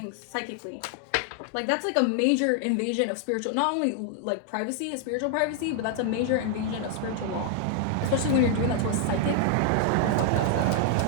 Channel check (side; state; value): both; different; correlation 0.00